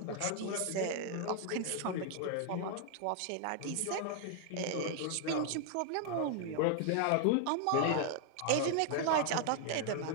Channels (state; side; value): different; both; correlation 0.00